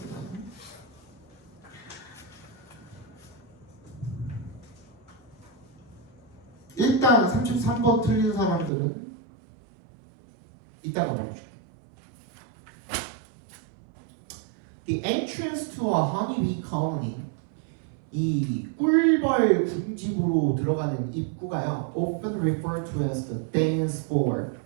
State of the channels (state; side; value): drops out; left; at 8.7 s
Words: 일단 33번 틀린 사람들은 이따가 말해줄게. The entrance to a honeybee colony, 이 꿀벌 군집으로 들어가는 입구가요, often referred to as the dance floor.